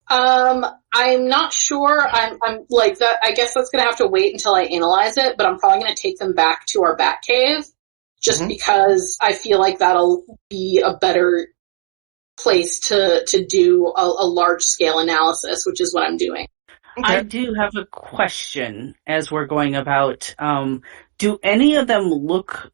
I'm not sure. I'm that. I guess that's gonna have to wait until I analyze it, but I'm probably gonna take them back to our bat cave, just because I feel like that'll be a better place to do a large scale analysis, which is what I'm doing. Okay. I do have a question as we're going about. Do any of them look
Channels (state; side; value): silent; left; digital silence